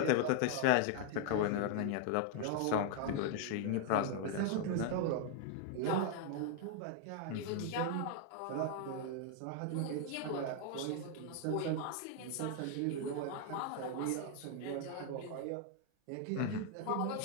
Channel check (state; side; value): different; both; correlation 0.00